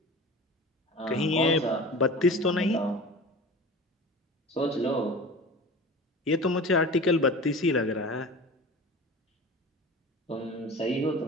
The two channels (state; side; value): normal; both; correlation 0.36